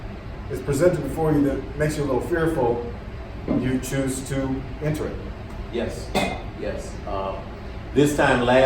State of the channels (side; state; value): both; identical; correlation 1.00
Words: is presented before you that makes you a little fearful, you choose to enter it. Yes. This time